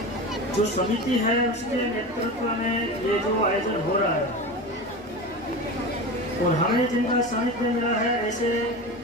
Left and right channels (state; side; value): normal; both; correlation 0.27